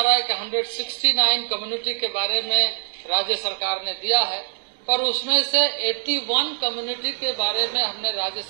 रहा है कि 169 कम्युनिटी के बारे में राज्य सरकार ने दिया है, पर उसमें से 81 कम्युनिटी के बारे में हमने राज्य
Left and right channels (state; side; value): silent; left; digital silence